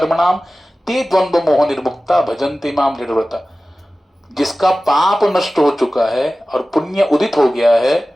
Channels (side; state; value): both; normal; correlation 0.96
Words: ते द्वंद्व मोह निर्मुक्ता भजन्ते माम दृढ़व्रता। जिसका पाप नष्ट हो चुका है और पुण्य उदित हो गया है,